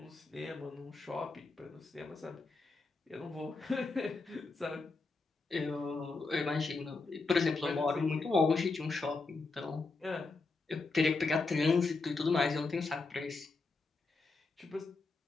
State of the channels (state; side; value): quieter; right; 3.8 dB